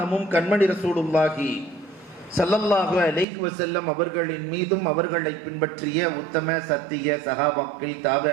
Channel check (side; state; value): left; drops out; at 3.2 s